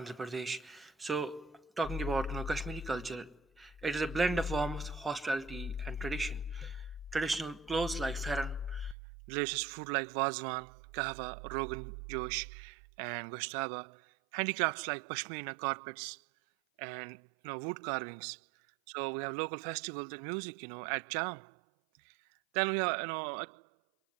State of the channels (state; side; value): drops out; left; at 9.0 s